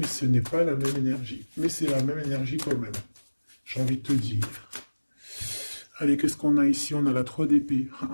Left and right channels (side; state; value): both; inverted; correlation -1.00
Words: ce n'est pas la même énergie. Mais c'est la même énergie quand même. J'ai envie de te dire. Allez, qu'est-ce qu'on a ici? On a la 3 d'épée.